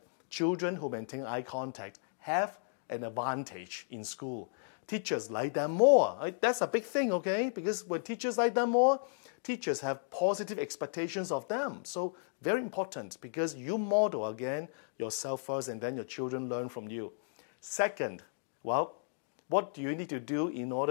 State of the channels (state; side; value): silent; right; digital silence